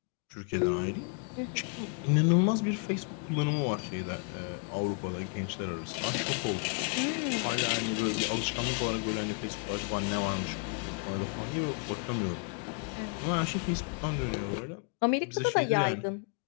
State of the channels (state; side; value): quieter; right; 37.6 dB